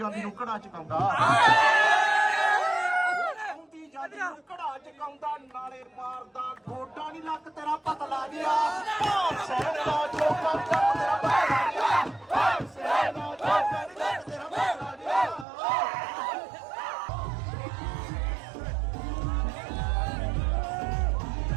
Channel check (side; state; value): left; drops out; at 15.5 s